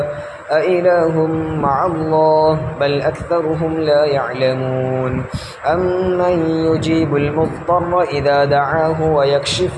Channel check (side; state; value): both; identical; correlation 1.00